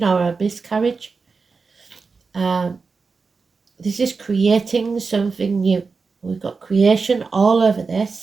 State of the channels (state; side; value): quieter; left; 4.6 dB